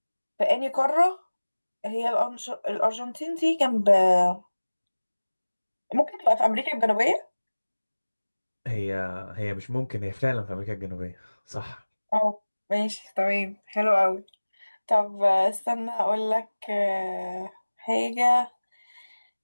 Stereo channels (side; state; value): both; inverted; correlation -1.00